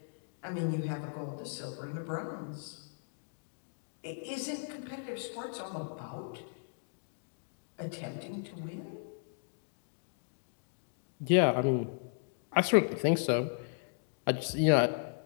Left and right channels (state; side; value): silent; right; digital silence